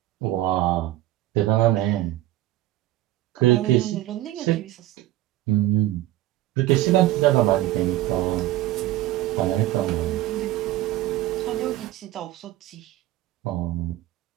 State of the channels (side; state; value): left; quieter; 15.3 dB